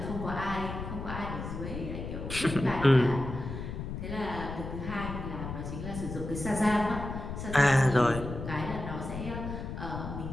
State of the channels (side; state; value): left; noise; rumble, 7 dB below the sound